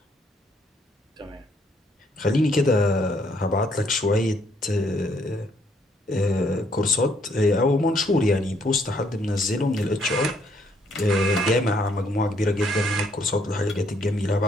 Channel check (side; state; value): both; normal; correlation 0.69